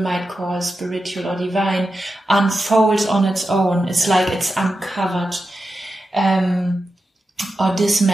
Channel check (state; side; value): normal; both; correlation 0.90